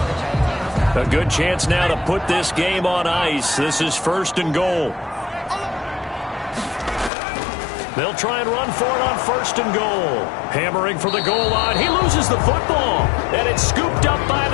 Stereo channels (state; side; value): drops out; right; at 7.1 s